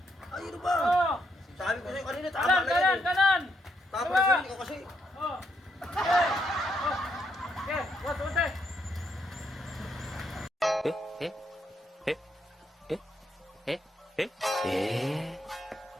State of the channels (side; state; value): both; normal; correlation 0.77